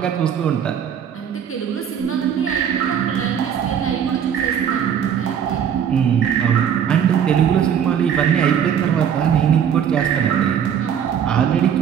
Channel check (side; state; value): left; quieter; 8.6 dB